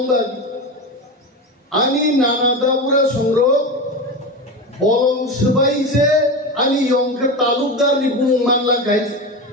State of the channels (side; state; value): both; normal; correlation 0.22